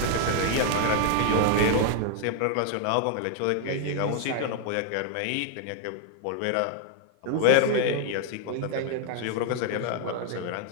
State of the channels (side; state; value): both; different; correlation 0.00